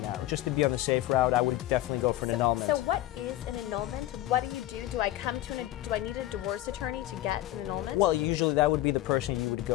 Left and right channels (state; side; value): quieter; right; 15.1 dB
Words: Just to be on the safe route, I would definitely go for an annulment. So what is an annulment? What do you do? Do I need a divorce attorney to get an annulment? Well, usually that would be the person you would